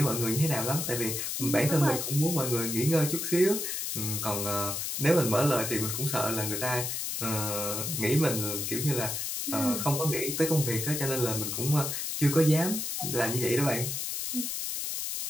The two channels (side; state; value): left; noise; hiss, 3 dB below the sound